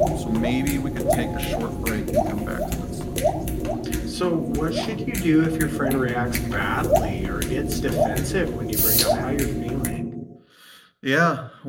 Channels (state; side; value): identical; both; correlation 1.00